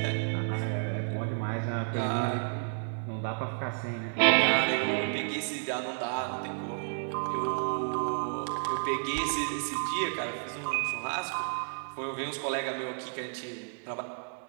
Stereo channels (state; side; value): silent; left; digital silence